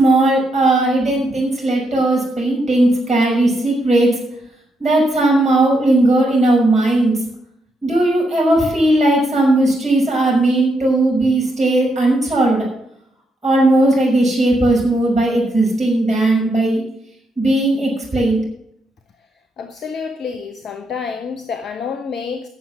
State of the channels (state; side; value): normal; both; correlation 0.80